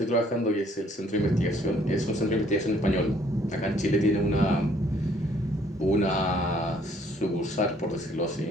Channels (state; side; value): normal; both; correlation 0.63